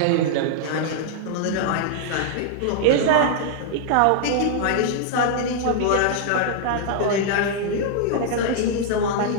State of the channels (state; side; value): different; both; correlation -0.01